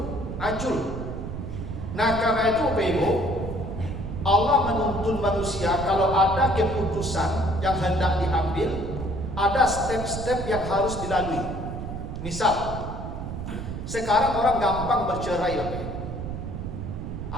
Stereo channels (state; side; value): noise; right; rumble, 6 dB below the sound